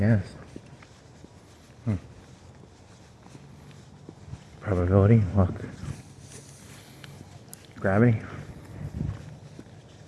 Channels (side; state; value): both; identical; correlation 1.00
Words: Probability, luck, gravity.